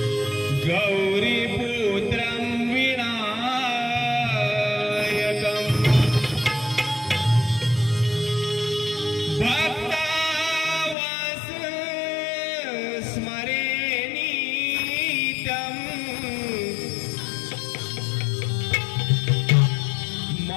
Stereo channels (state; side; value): drops out; right; at 11.0 s